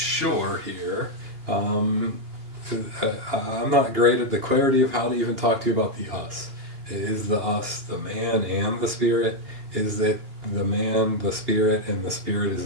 here. I'm not great at the clarity of how to even talk to you about the us. Is the us the man and the spirit? Is it the man, the spirit, and the spirit is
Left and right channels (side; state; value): left; late; 2.8 ms